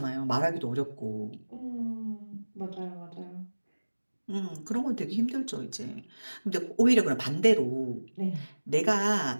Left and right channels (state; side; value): inverted; both; correlation -1.00